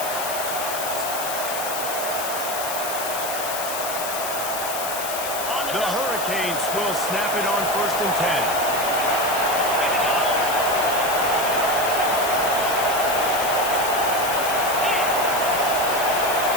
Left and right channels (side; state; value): left; noise; hiss, 6 dB below the sound